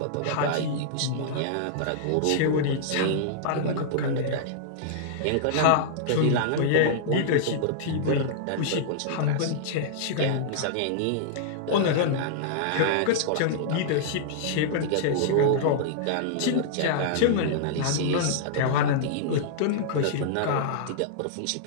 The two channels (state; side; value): different; both; correlation -0.02